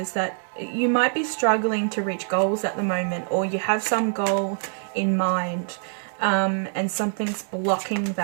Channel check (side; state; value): left; silent; 62 dB below the other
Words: that you might be struggling to reach goals at the moment, or you have some goal in mind, and something's blocking